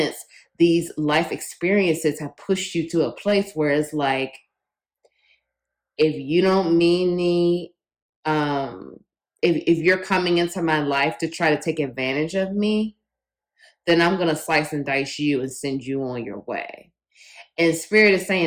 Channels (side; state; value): both; identical; correlation 1.00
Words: these life experiences have pushed you to a place where it's like, if you don't mean me, if you're coming into my life to try to take advantage of me, then I'm going to slice and dice you and send you on your way. And Spirit is